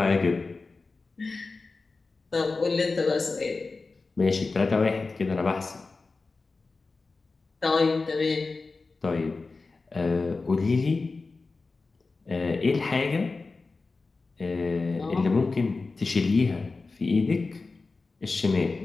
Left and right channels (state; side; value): quieter; right; 3.9 dB